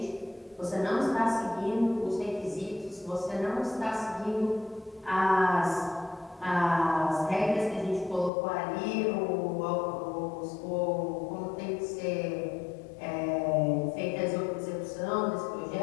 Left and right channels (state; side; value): drops out; right; at 8.3 s